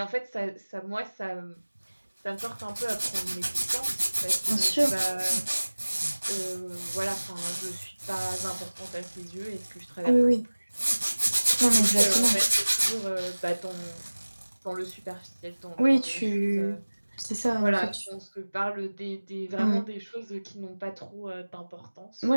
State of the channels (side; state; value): both; inverted; correlation -1.00